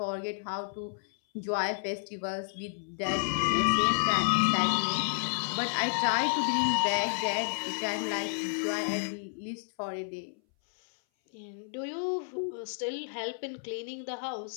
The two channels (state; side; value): silent; right; 57 dB below the other